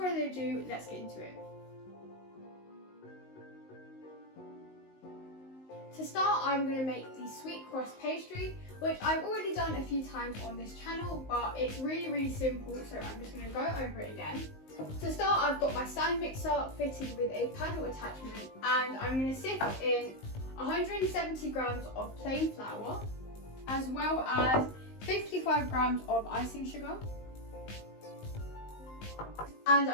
ado, let's get into it. To start, I'm going to make the sweet crust pastry, which I've already done a few times on this channel, but it's really simple, so I'm just going to go over it again. To start, I've got my stand mixer fitted with a paddle attachment, and I'm going to sift in 170 grams of plain flour, as well as 55 grams of icing sugar. And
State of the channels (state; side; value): late; right; 19 ms